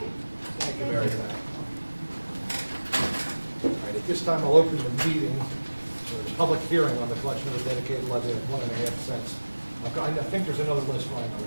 Thank you very much. All right, at this time, I'll open the meeting for the public hearing on the collection of a dedicated levy of 1.5 cents. I think there's another list flying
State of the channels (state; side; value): inverted; both; correlation -1.00